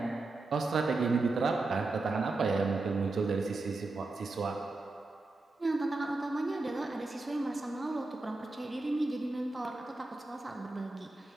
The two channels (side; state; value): left; quieter; 3.3 dB